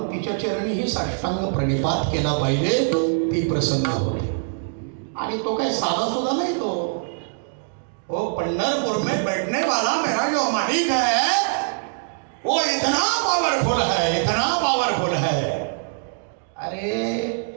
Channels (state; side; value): silent; left; digital silence